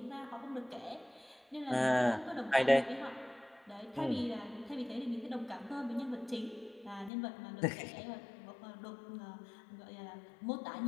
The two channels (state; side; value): drops out; right; at 7.1 s